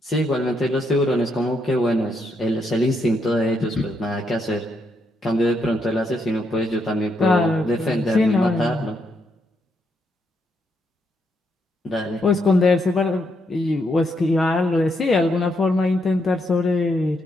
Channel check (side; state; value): both; normal; correlation 0.78